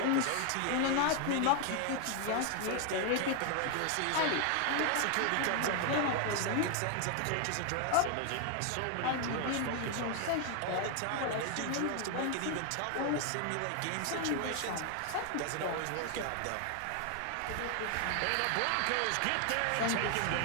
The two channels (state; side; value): different; both; correlation 0.00